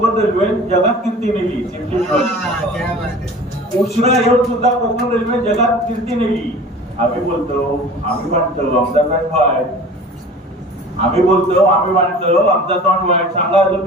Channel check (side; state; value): both; normal; correlation 0.41